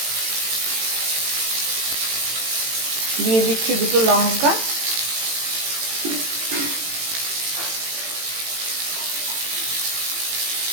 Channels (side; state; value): left; late; 18 ms